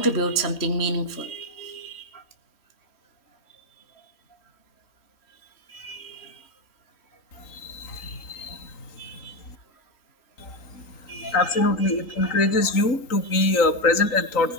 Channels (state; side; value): late; right; 3.9 ms